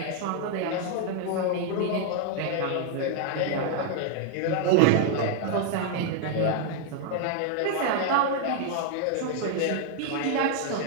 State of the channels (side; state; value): both; different; correlation 0.00